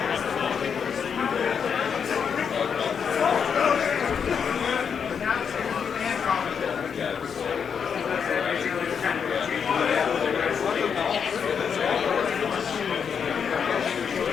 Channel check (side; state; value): right; quieter; 6.9 dB